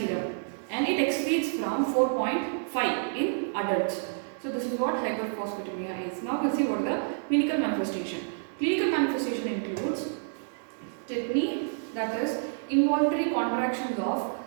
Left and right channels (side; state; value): left; silent; digital silence